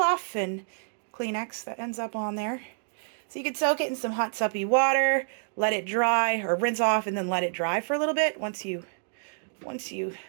and Kleenex that ends up on there. So you could soak it in some hot suppy water, let it dry, or rinse off and then let it dry for a little bit once you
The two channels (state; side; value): silent; left; digital silence